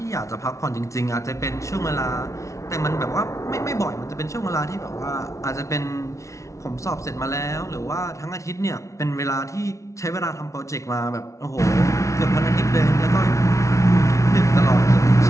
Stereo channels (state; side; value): late; right; 0.14 ms